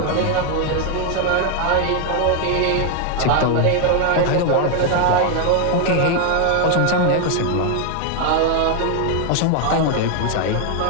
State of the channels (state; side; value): different; both; correlation 0.01